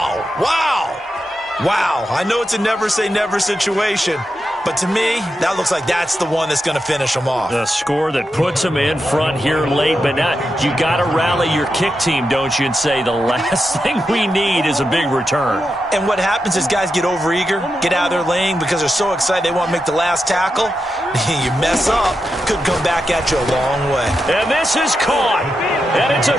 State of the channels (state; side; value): normal; both; correlation 0.87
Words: Wow. Wow. I know it's a never say never situation, but to me, that looks like that's the one that's going to finish them off. The score that puts them in front here late, but not. You got to rally your kick team, don't you, and say the last thing we need is a big return. And what happens is guys get overeager, get out of their lane because they're so excited they want to make the last tackle. You mess up, could come back at you a long way. And this is caught, and it's a